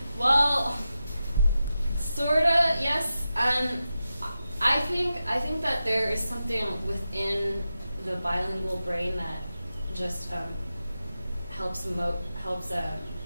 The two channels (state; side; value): inverted; both; correlation -0.91